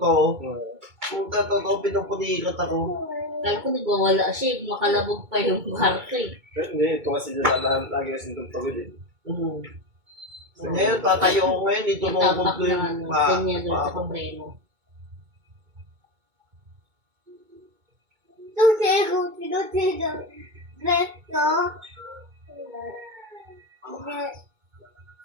Kung na totoo, pinupulikat ako. Kaya ko nagwawala siya, makalabog pa yung kwarto eh. Hindi, ito kasi lagi kasi itong pagod eh. Ngayon, tatayo ko ngayon, dito nukod ko yung Kanya doon sa kompreno.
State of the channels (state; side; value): late; left; 2.2 ms